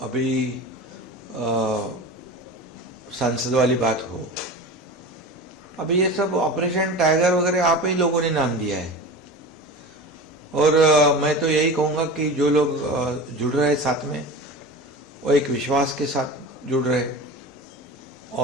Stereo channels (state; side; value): normal; both; correlation 0.31